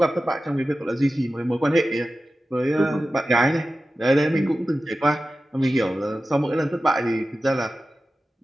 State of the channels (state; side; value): normal; both; correlation 0.94